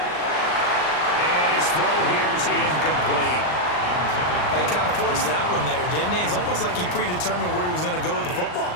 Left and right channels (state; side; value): late; right; 39 ms